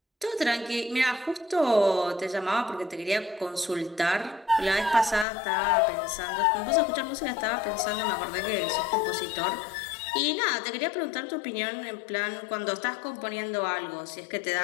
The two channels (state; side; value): drops out; right; at 5.2 s